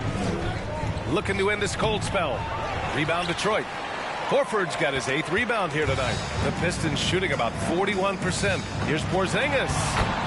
Looking to end this cold spell. Rebound Detroit. Horford's got his 8th rebound here tonight. The Pistons shooting about 41%. Here's Porzingis.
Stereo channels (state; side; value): identical; both; correlation 1.00